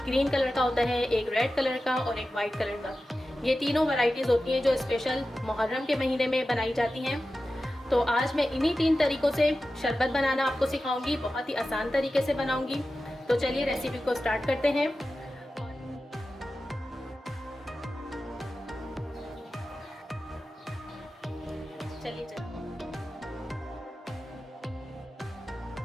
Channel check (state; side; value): normal; both; correlation 0.94